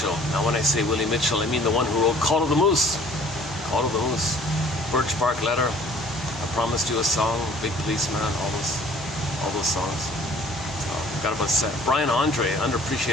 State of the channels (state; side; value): normal; both; correlation 0.53